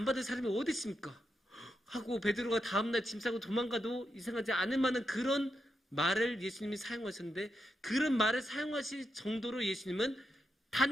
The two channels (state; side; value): normal; both; correlation 0.85